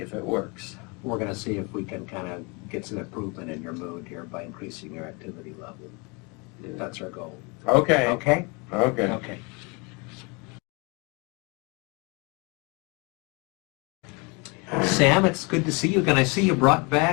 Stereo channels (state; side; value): quieter; right; 29.9 dB